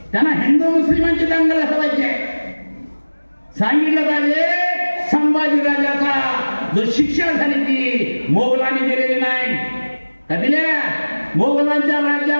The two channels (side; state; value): both; inverted; correlation -1.00